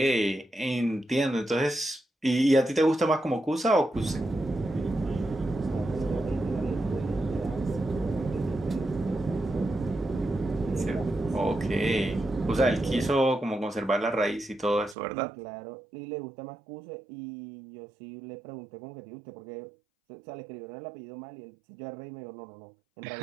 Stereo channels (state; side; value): drops out; left; at 15.0 s